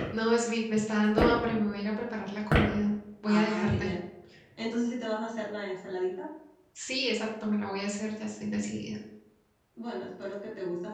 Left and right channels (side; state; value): both; identical; correlation 1.00